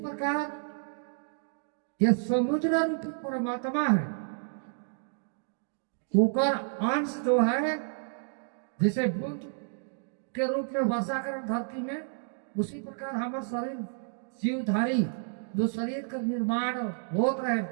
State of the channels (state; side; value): silent; left; digital silence